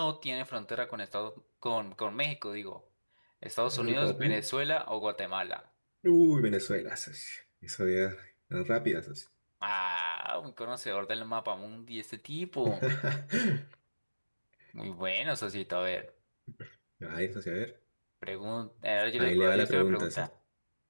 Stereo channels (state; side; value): inverted; both; correlation -1.00